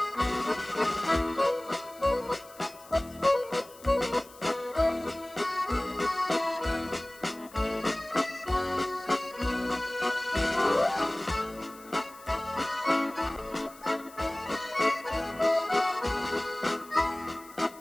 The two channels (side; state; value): left; noise; hiss, 22 dB below the sound